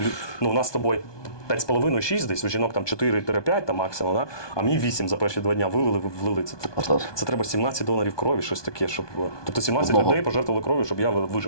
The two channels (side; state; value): right; late; 1.2 ms